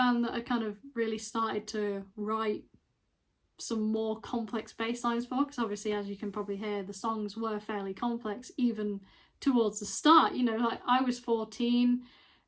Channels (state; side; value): identical; both; correlation 1.00